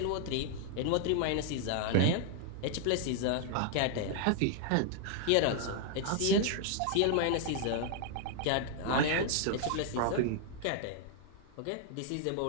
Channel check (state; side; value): different; both; correlation 0.00